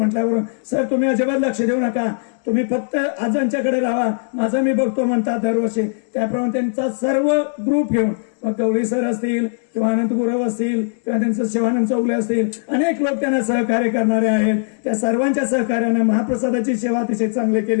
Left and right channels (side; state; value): right; silent; digital silence